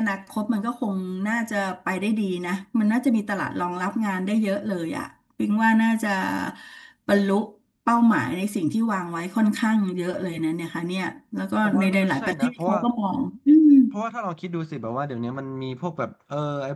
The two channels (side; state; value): both; identical; correlation 1.00